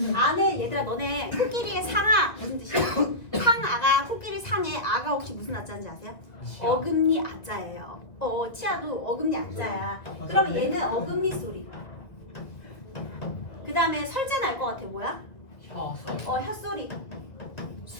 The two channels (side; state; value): right; late; 1.9 ms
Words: 아는, 얘들아, 너네 코끼리의 상아 무슨 뜻이야? 상아가, 코끼리 상의 아가 혹시 무슨 아자인지 아세요? 어금니 아자예요. 치아도 어금니 아자야. 그러면 얘는 어금니 소리. 그 다음에 설자는 알 것 같아. 뭐야? 혀소리. 혀소리.